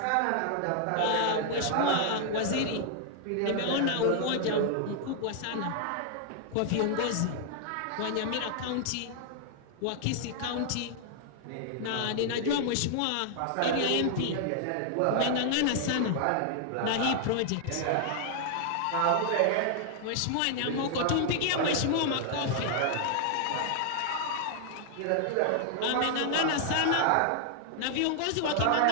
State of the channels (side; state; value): both; different; correlation 0.00